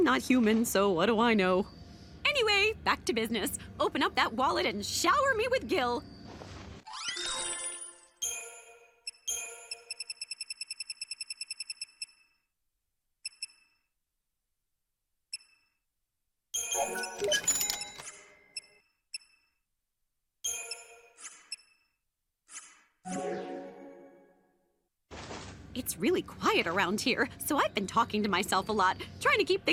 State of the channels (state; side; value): identical; both; correlation 1.00